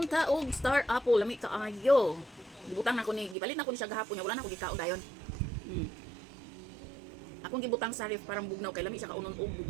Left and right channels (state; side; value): drops out; left; at 3.4 s